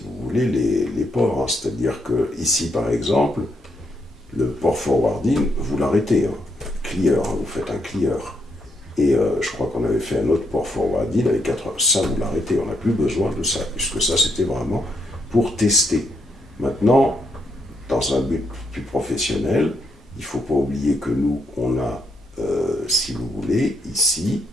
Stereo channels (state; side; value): normal; both; correlation 0.76